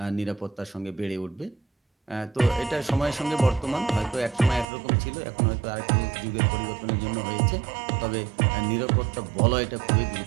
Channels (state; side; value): drops out; left; at 4.7 s